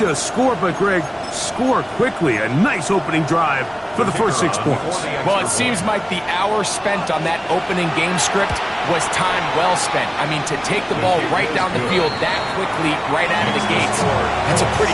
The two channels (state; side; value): identical; both; correlation 1.00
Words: score, but, Greg, score quickly. A nice opening drive for the first 6 points. Well, it seems like the hour spent on that opening game script was time well spent. I mean, to take the ball right down the field that quickly, right out of the gates, that's a pretty